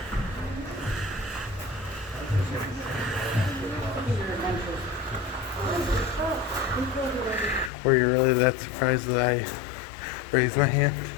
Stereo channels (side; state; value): right; drops out; at 7.7 s